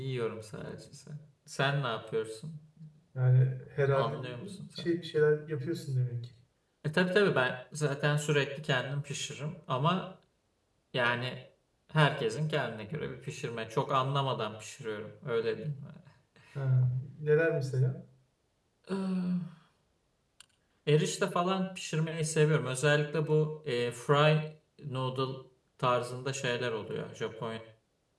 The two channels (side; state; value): both; identical; correlation 1.00